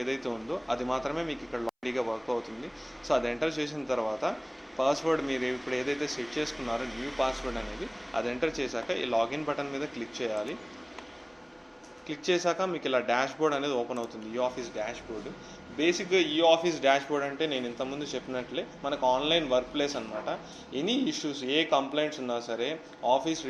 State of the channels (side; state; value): both; identical; correlation 1.00